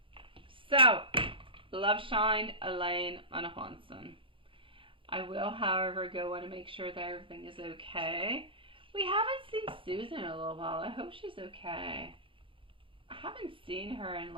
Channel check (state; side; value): late; left; 0.25 ms